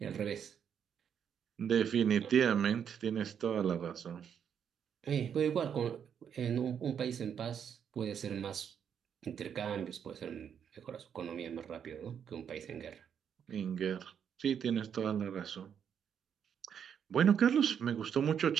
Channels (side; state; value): left; quieter; 8.1 dB